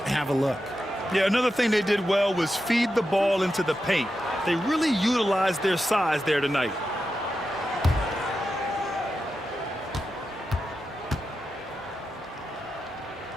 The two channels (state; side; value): normal; both; correlation 0.89